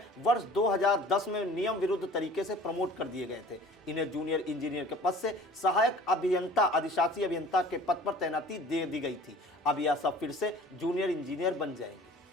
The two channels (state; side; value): normal; both; correlation 0.47